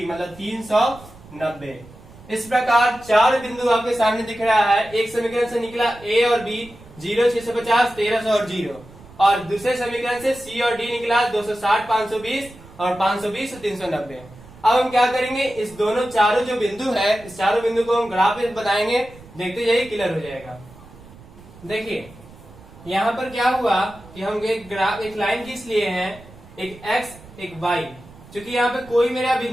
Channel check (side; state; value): right; noise; rumble, 21 dB below the sound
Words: मतलब 390। इस प्रकार चार बिंदु आपके सामने दिख रहा है। एक समीकरण से निकला a और b, 0, 650, 1300 और 0, और दूसरे समीकरण से c और d निकला 260, 520 और 520 और 390। अब हम क्या करेंगे? इस दोनों चारों जो बिंदु है, इस चारों बिंदु को हम ग्राफ में बताएंगे, देखते जाइए, क्लियर हो जाएगा। देखिए यहाँ पर क्या हुआ कि हम एक ग्राफ, एक लाइन खींच लिए हैं, एक x एक y, क्योंकि यहाँ पे कोई मेरा